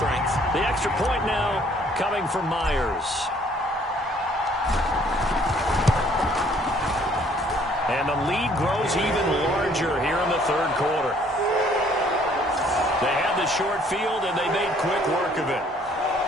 The extra point now coming from Myers. And the lead grows even larger here in the 3rd quarter. They had the short field, and they made quick work of it.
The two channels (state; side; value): normal; both; correlation 0.61